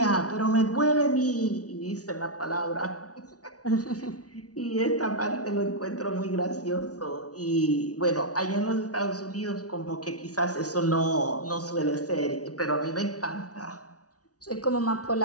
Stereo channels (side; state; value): right; late; 0.68 ms